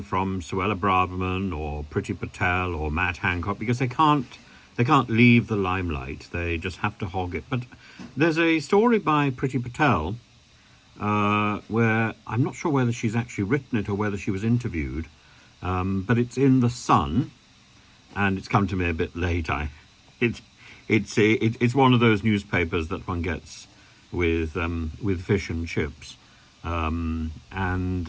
from Suella Braverman or Priti Patel or Matt Hancock, because they can't leave the limelight. They just have to hog it. But there's a story by Priti Patel where I'm not sure whether she's actually written it or whether she was interviewed, but it's in The Sun, and it's come to me a bit late. It's one of those newspapers that one gets with fish and chips, and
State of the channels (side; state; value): both; identical; correlation 1.00